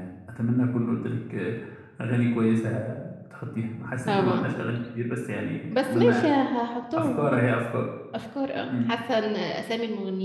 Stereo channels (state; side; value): identical; both; correlation 1.00